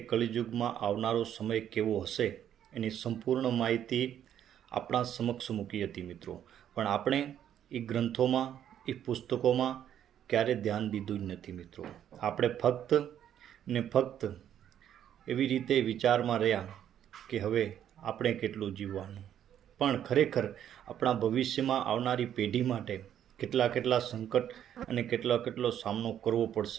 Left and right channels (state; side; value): quieter; left; 10.2 dB